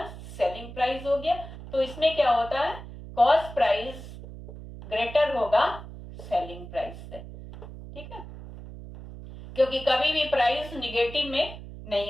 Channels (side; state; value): right; noise; hum, 13 dB below the sound